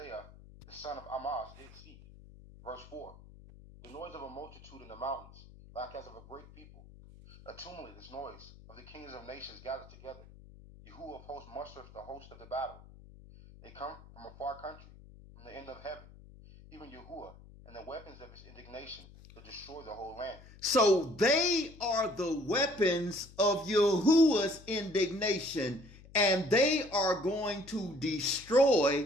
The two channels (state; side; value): noise; left; hum, 20 dB below the sound